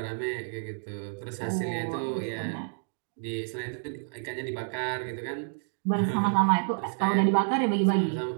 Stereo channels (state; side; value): silent; left; digital silence